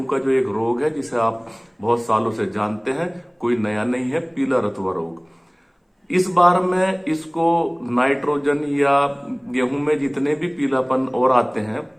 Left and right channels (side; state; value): both; identical; correlation 1.00